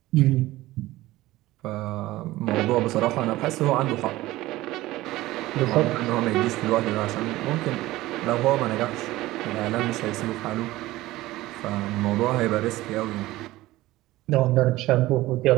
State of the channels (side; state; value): left; quieter; 17.4 dB